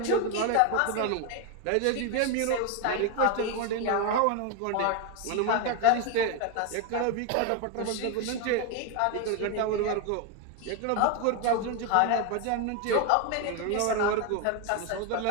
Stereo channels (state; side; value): different; both; correlation 0.01